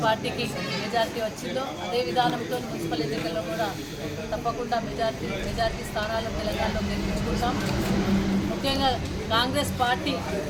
పార్టీకి మెజార్టీ వచ్చిందో అదే విధానంతో మున్సిపల్ ఎన్నికల్లో కూడా తప్పకుండా మెజార్టీ స్థానాలు తెలంగాణలో గెలిపించుకుంటాం. ముఖ్యంగా కాంగ్రెస్ పార్టీ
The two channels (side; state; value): both; identical; correlation 1.00